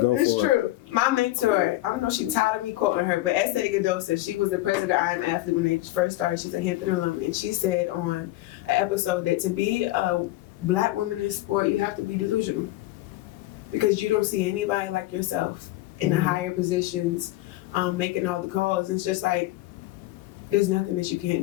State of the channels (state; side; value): quieter; right; 17.3 dB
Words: It's true. My mentor, I don't know if she's tired of me quoting her, but Sayle said she was the president of I Am Athlete when they first started. She's a Hampton alum, and she said on an episode that to be a black woman in sport, you have to be delusional. Because you don't see anybody like yourself in the higher positions, making all the calls. It's just like, there's nothing that you